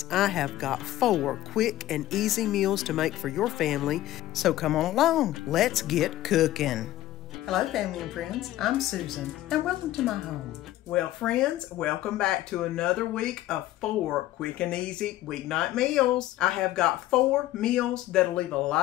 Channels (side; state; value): right; quieter; 14.8 dB